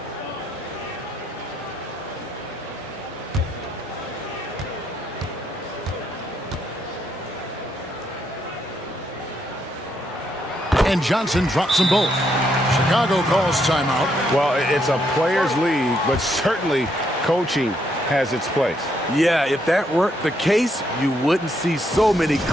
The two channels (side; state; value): both; normal; correlation 0.75